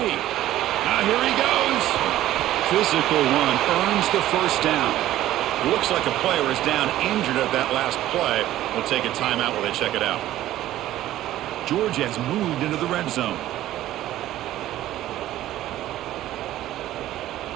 Now here he goes. Physical one earns the 1st down. Looks like a player is down injured at that last play. We'll take a timeout while they check it out. Georgia has moved into the red zone.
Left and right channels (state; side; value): quieter; left; 14.0 dB